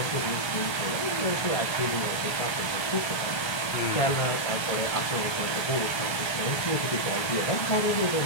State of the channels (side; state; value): right; late; 1.8 ms